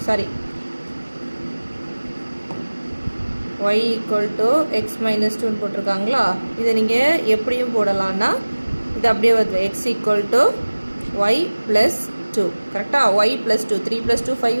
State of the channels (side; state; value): both; inverted; correlation -1.00